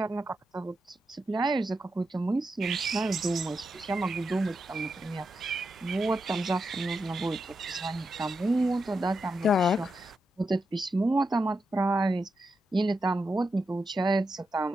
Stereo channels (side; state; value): both; normal; correlation 0.86